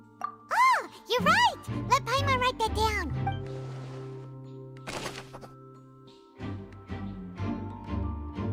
Oh, you're right! Let Paimon write that down.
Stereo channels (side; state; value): both; identical; correlation 1.00